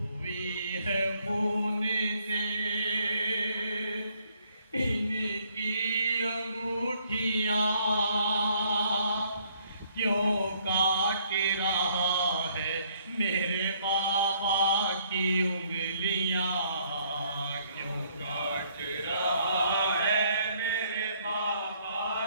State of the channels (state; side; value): inverted; both; correlation -0.66